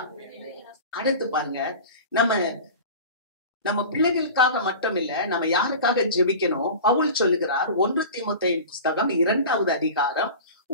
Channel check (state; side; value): inverted; both; correlation -0.35